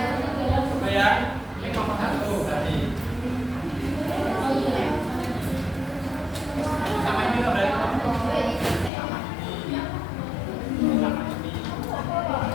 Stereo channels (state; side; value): drops out; right; at 8.9 s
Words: Supaya ini kelompok 1 berarti. Sama ini loh berarti.